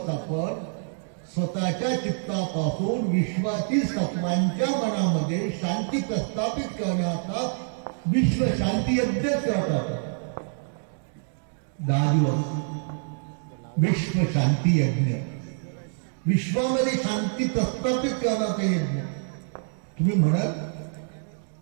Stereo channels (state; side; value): silent; left; 61 dB below the other